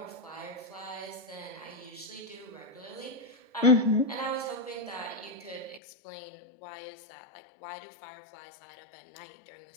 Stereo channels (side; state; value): right; drops out; at 5.8 s